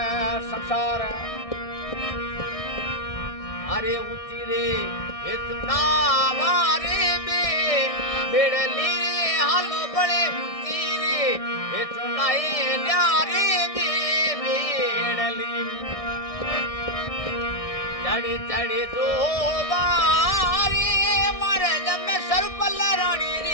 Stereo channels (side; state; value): right; late; 1.6 ms